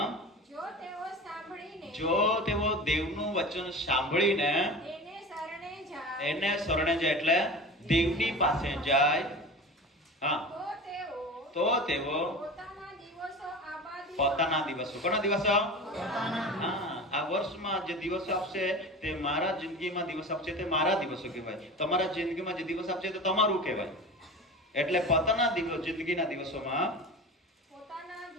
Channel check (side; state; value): both; normal; correlation 0.33